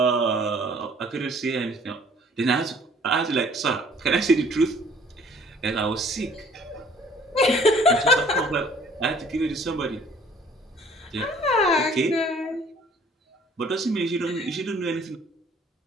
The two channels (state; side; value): normal; both; correlation 0.56